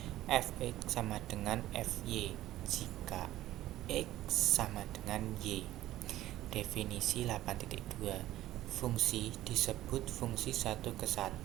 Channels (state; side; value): quieter; left; 14.6 dB